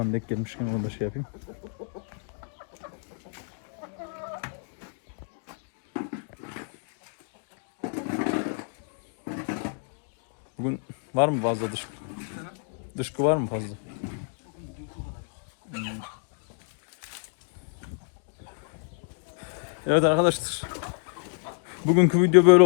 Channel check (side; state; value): right; silent; 56 dB below the other